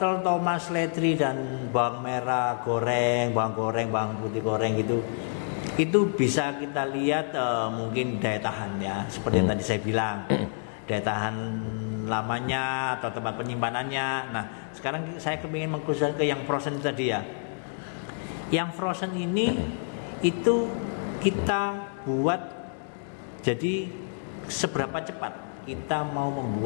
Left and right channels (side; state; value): right; silent; digital silence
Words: tomat, seledri dan bawang merah goreng, bawang putih goreng gitu. Itu bisa kita lihat mungkin daya tahan ya, seperti yang tadi saya bilang, daya tahan lamanya atau tempat penyimpanannya. Nah, sekarang saya kepingin mengkhususkan ke yang frozen tadi ya. Yang frozen ini itu kita buat jadi seberapa cepat kita mau